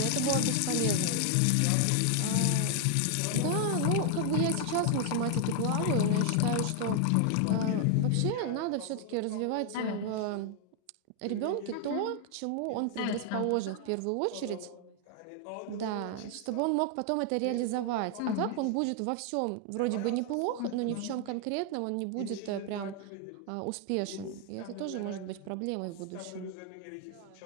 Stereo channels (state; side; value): different; both; correlation 0.00